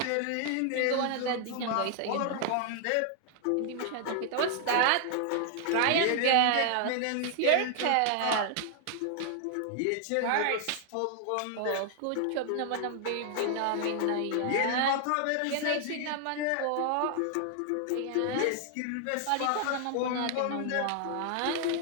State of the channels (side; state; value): both; different; correlation 0.00